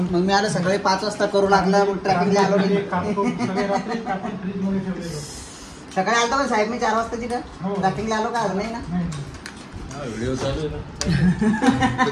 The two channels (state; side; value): identical; both; correlation 1.00